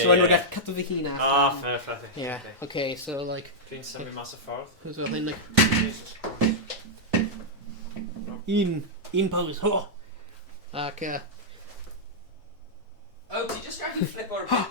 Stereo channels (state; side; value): normal; both; correlation -0.08